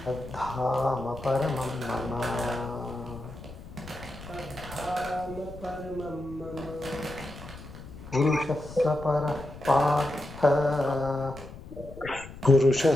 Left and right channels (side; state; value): left; noise; rumble, 15 dB below the sound